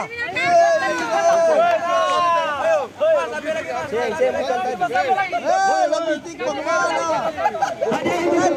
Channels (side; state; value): both; identical; correlation 1.00